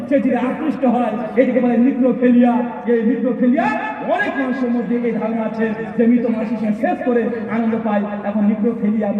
সে যদি আকৃষ্ট হয়, এটিকে বলে নিক্রোফিলিয়া। এই নিক্রোফিলিয়া অনেক মানুষের মধ্যে এই ধারণা আছে যে মৃত মানুষের সঙ্গে সেক্স করে আনন্দ পায়। এখন নিক্রোফিলিয়া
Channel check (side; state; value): both; identical; correlation 1.00